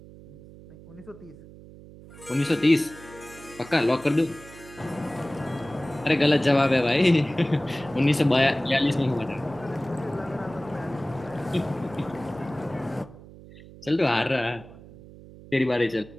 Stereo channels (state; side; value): noise; right; hum, 19 dB below the sound